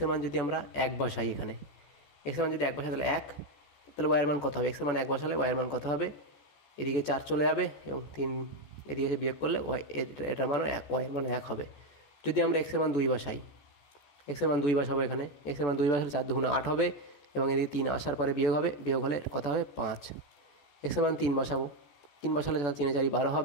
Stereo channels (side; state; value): right; late; 14 ms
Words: মান যদি আমরা এক বসাই, এখানে এক্সের মান যদি এক বসাই তাহলে এক, তাহলে ওয়াইয়ের মান কত হবে? এক্সের মান এক বসালে ওয়াইয়ের মান কত হবে? এদিকে 4 চলে যাবে এবং 3 এদিকে এসে বিয়োগ করলে ওয়াই এটার মানও ওয়াইয়ের মান 1 হবে। যদি আমরা এক্সের মান 2 বসাই, এক্সের মান 2 বসাবো, এখানে এক্সের মান 2 বসালে 4 দুগুণে 8 হবে এবং এদিকে 3 আসার পরে বিয়োগ হবে, বিয়োগ হলে কত হবে? 5। এক্সের মান 3 বসাবো, 3 বসালে 3 4 12